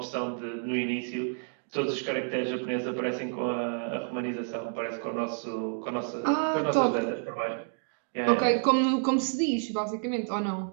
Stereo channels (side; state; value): left; silent; digital silence